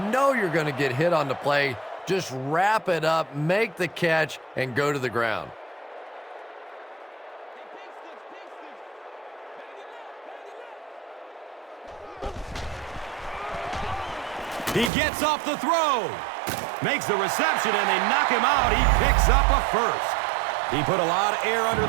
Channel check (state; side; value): drops out; left; at 14.9 s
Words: you're going to get hit on the play. Just wrap it up, make the catch, and go to the ground. He gets off the throw. Makes the reception, and they knock him out. He picks up a first. He put a lot of air under